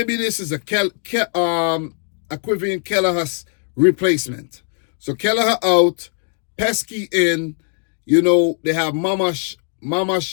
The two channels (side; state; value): right; silent; 57 dB below the other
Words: this is a Quivin Keller has replacement. So Kelleher out, Pesky in, they have